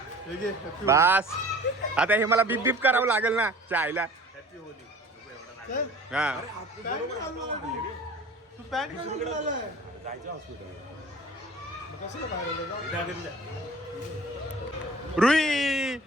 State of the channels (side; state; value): both; normal; correlation 0.45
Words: बस आता हे मला बीप बीप करावं लागेल ना चायला. हा तू पॅन्ट घालून आलाय. रुई